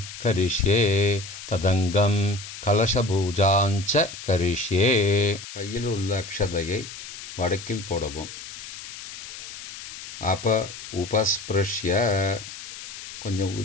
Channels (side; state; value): left; noise; hiss, 12 dB below the sound